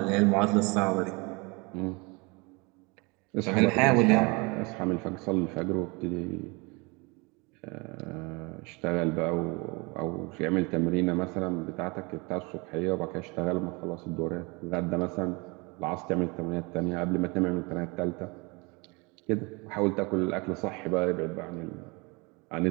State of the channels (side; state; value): left; quieter; 28.0 dB